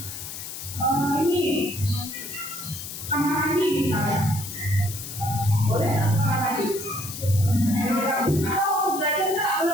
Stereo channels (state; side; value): noise; left; hiss, 9 dB below the sound